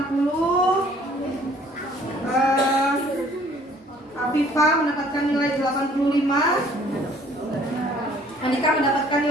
Afifa mendapatkan nilai 85, Andika mendapatkan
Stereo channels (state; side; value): normal; both; correlation 0.57